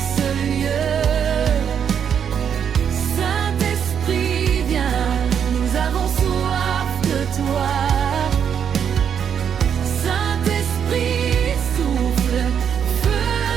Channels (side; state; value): left; quieter; 8.0 dB